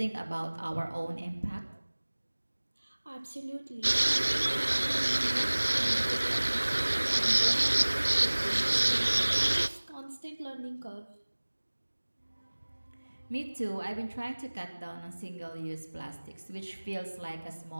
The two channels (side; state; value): both; inverted; correlation -1.00